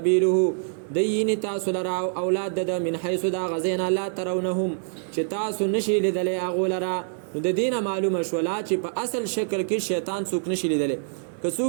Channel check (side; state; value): left; silent; digital silence